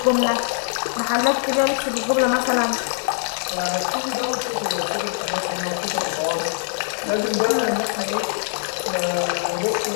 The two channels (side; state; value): right; silent; digital silence